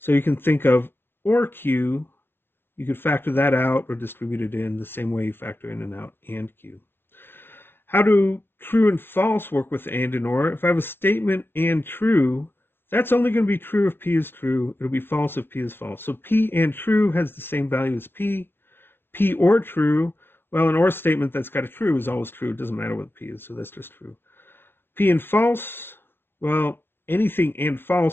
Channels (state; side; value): late; right; 0.11 ms